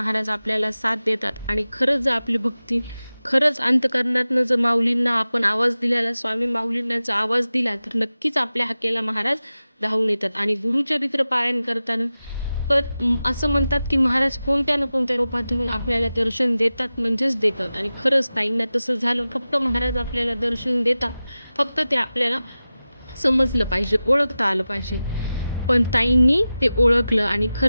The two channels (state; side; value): inverted; both; correlation -0.95